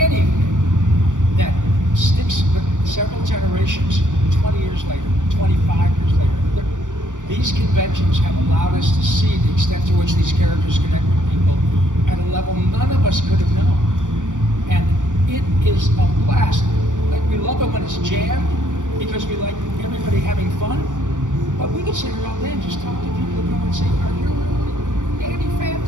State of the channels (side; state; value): left; late; 0.87 ms